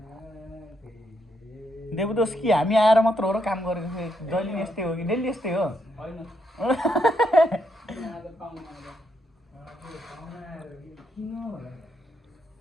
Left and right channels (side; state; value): both; normal; correlation 0.78